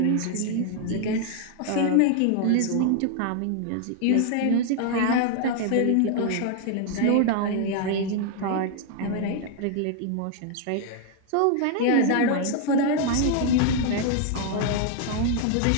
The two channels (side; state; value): both; different; correlation 0.00